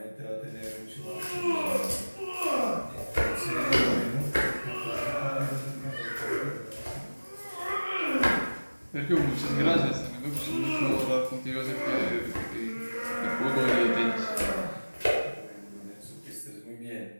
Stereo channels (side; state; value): both; inverted; correlation -1.00